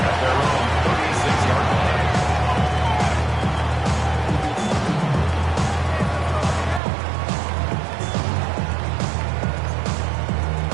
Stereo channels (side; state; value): left; drops out; at 6.8 s